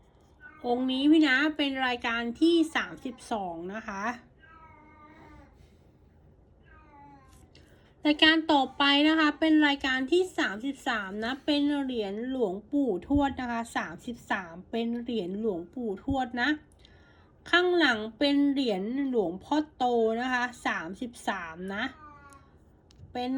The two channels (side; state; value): both; identical; correlation 1.00